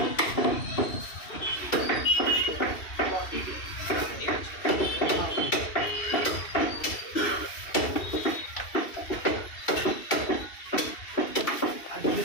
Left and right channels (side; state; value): right; late; 2.7 ms